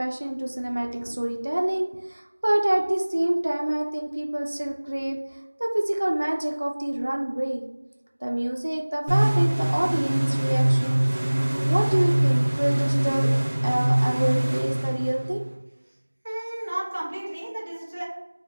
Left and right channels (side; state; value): both; inverted; correlation -1.00